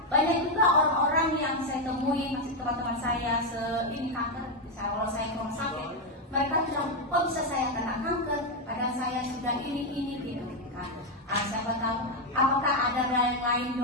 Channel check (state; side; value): normal; both; correlation 0.04